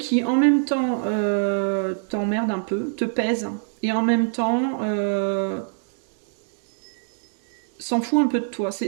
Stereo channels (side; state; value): left; silent; digital silence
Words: en même temps, t'emmerde un peu, te pèse, et en même temps, s'en fout un peu de toi.